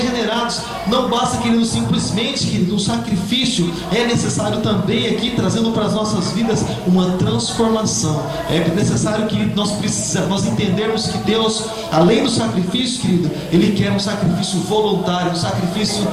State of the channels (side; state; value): both; identical; correlation 1.00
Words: Não basta, querido, simplesmente, querido, um sacrifício. É necessário também aqui, trazendo para as nossas vidas uma transformação. É necessário que nós entendermos que Deus, além do sacrifício, querido, Ele quer um sacrifício voluntário, um sacrifício